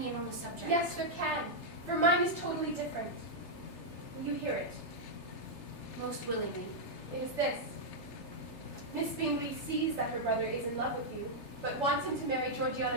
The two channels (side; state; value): right; late; 3.3 ms